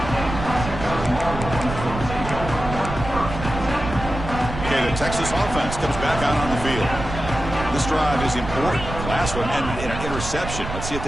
Okay, the Texas offense comes back out on the field. This drive is important. Last one ended in an interception. Let's see if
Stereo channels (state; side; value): noise; right; rumble, 7 dB below the sound